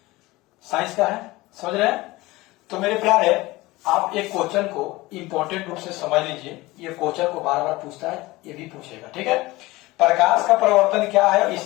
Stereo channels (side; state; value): right; quieter; 20.3 dB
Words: साइंस का है, समझ रहे हैं। तो मेरे प्यारे, आप एक क्वेश्चन को इंपॉर्टेंट रूप से समझ लीजिए। ये क्वेश्चन को बार बार पूछता है, ये भी पूछेगा, ठीक है। प्रकाश का प्रवर्तन क्या है,